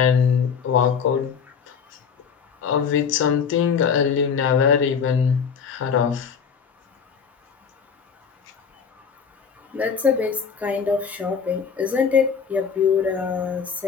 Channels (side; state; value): right; quieter; 6.5 dB